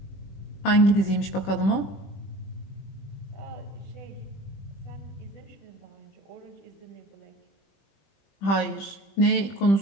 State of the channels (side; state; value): right; late; 20 ms